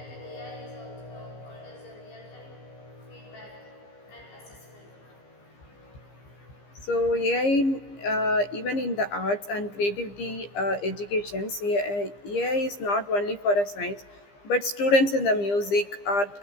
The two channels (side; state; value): right; late; 15 ms